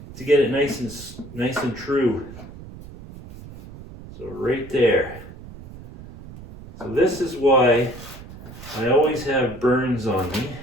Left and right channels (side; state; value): right; noise; rumble, 16 dB below the sound